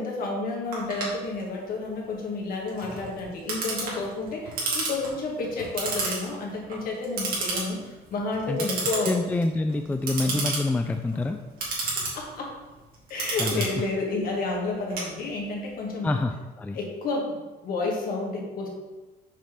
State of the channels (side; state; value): both; normal; correlation 0.47